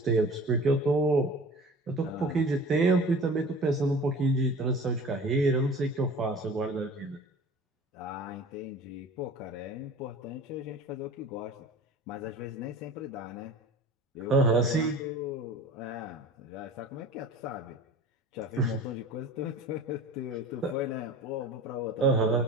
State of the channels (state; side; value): normal; both; correlation 0.41